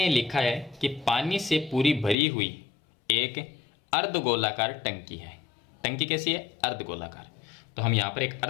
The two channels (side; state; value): right; drops out; at 2.1 s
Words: लिखा है कि पानी से पूरी भरी हुई एक अर्धगोलाकार टंकी है। टंकी कैसी है, अर्धगोलाकार। तो हम यहाँ पर एक